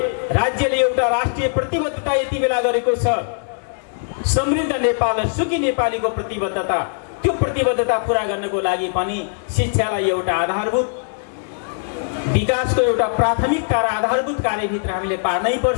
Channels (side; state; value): right; silent; digital silence